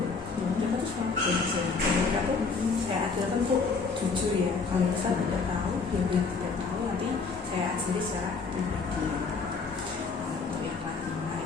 mereka tuh selalu belajar. Mereka tuh saya ajarkan tuh jujur ya, kalau misalnya tidak tahu ya bilang tidak tahu, nanti saya ajari secara pribadi. Untuk yang kelas 5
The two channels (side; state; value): right; quieter; 4.6 dB